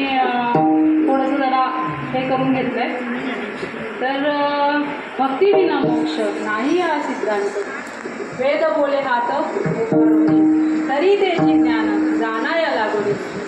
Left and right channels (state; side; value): identical; both; correlation 1.00